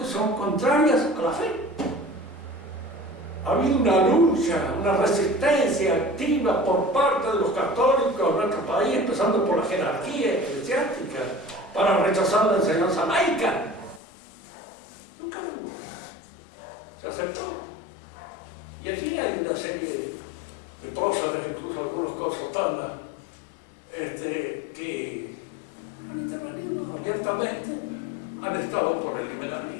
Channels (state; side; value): drops out; right; at 14.0 s